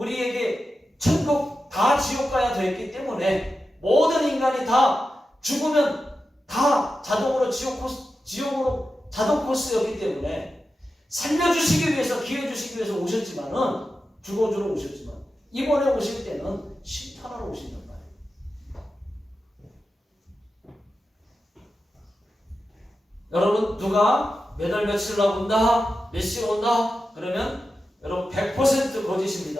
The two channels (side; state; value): both; normal; correlation 0.91